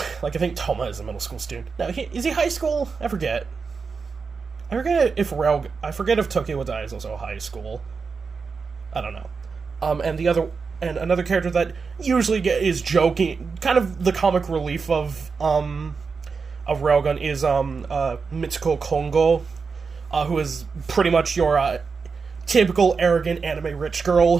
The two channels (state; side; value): quieter; left; 5.1 dB